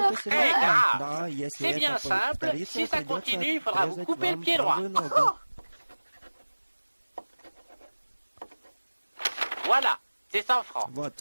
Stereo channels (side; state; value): both; inverted; correlation -1.00